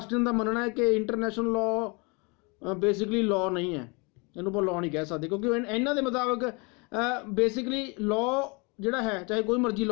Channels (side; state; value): right; quieter; 30.4 dB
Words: ਦਾ ਮੰਨਣਾ ਹੈ ਕਿ ਇੰਟਰਨੈਸ਼ਨਲ ਲਾਅ ਬੇਸਿਕਲੀ ਲਾਅ ਨਹੀਂ ਹੈ, ਇਹਨੂੰ ਆਪਾਂ ਲਾਅ ਨਹੀਂ ਕਹਿ ਸਕਦੇ, ਕਿਉਂਕਿ ਇਹਨਾਂ ਦੇ ਮੁਤਾਬਕ ਬੇਸਿਕਲੀ ਲਾਅ ਜਿਹੜਾ ਹੈ, ਚਾਹੇ ਕੋਈ ਮਰਜ਼ੀ